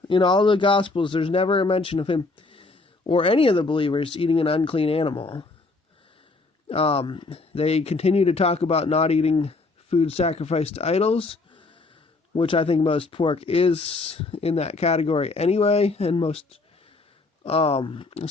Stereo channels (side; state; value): right; quieter; 3.5 dB